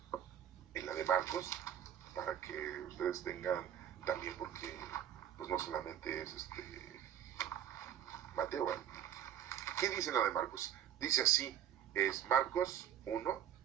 en la de Marcos, para que ustedes tengan también, porque pues no solamente es Mateo, ¿verdad? ¿Qué dice en la de Marcos? Dice así, es Marcos 1,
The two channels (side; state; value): left; quieter; 10.1 dB